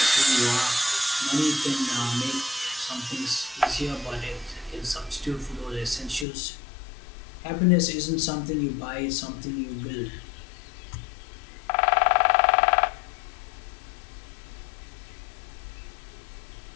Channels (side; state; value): right; drops out; at 6.2 s